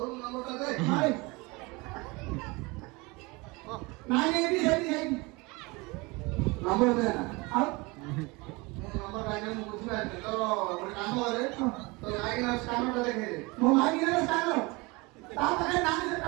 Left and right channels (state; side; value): quieter; left; 25.4 dB